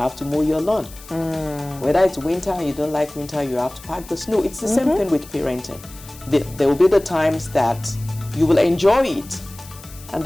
to mow your lawn. Whether it's winter and you don't like winter, you have to pack the snow. It's the same thing with parenting. There will be the times that you will enjoy it. And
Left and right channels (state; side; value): noise; left; hiss, 19 dB below the sound